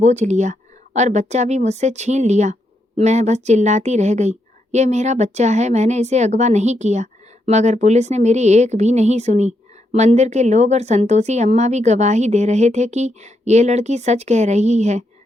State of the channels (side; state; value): both; normal; correlation 0.80